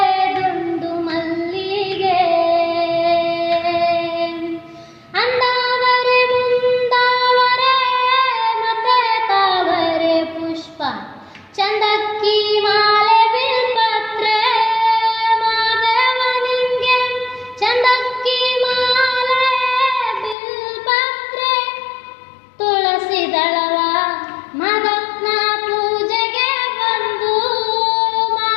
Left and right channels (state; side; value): drops out; right; at 20.4 s